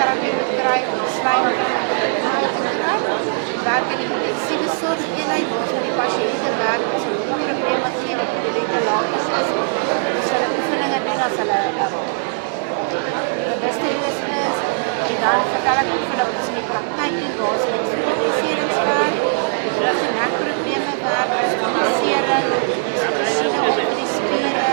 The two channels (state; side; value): silent; left; digital silence